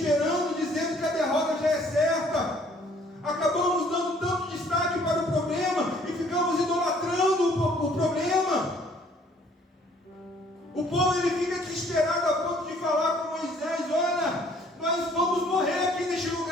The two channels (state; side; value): normal; both; correlation 0.59